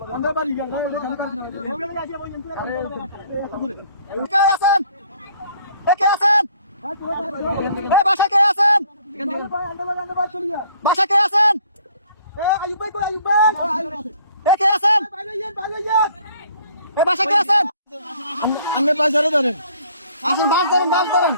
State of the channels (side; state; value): both; inverted; correlation -0.59